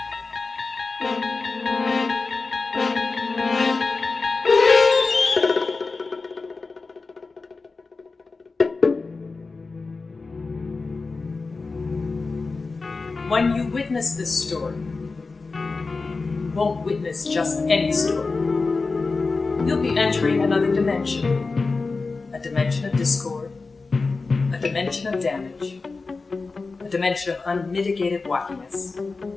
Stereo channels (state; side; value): quieter; right; 4.0 dB